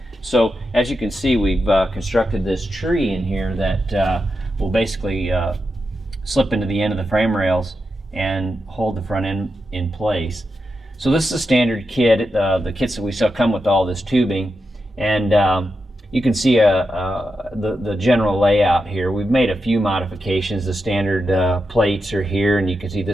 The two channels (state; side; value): normal; both; correlation 0.88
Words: So as you can see, we've constructed this tree in here that will basically slip into the end of the frame rails and hold the front end in place. So this is a standard kit. The kits that we sell come with all this tubing, and you can see the general layout here. We've made a few modifications. The standard plates are here, and you can see